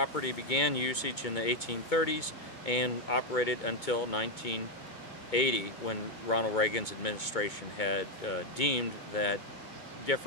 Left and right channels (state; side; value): late; right; 2.2 ms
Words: began usage in the 1830s and operated until 1980, when Ronald Reagan's administration had deemed that